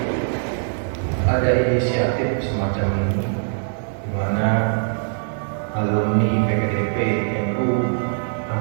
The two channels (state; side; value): silent; left; 64 dB below the other